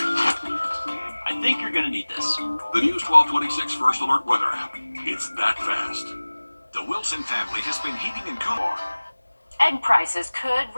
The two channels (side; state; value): both; inverted; correlation -1.00